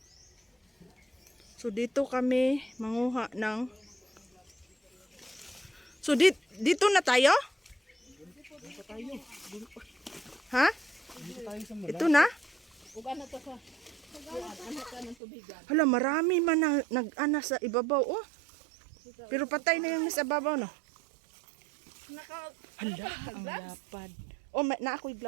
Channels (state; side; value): drops out; left; at 15.2 s